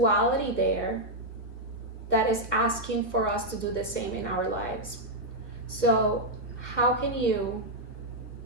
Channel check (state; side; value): late; right; 1.9 ms